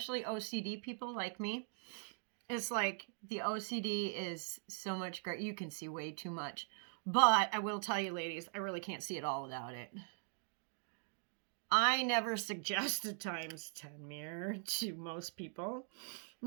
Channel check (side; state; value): left; silent; 50 dB below the other